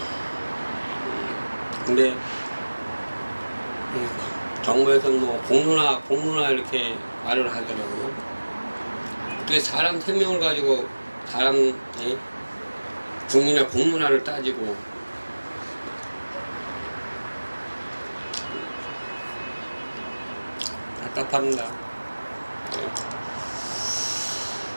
근데 정부에서는 뭐 공론화 이렇게 말을 하더라고요. 어떻게 사람 생명을 가지고 사람 국민의 공론화를 따지고 답답합니다.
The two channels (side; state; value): both; inverted; correlation -1.00